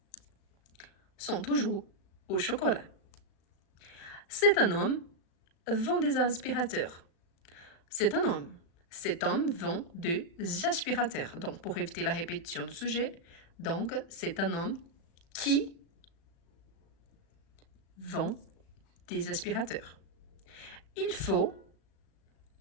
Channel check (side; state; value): right; late; 36 ms